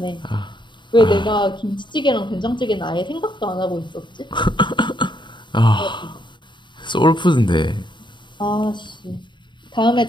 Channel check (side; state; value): right; late; 0.23 ms